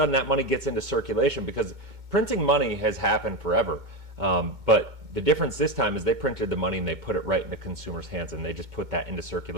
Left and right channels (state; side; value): late; left; 2.2 ms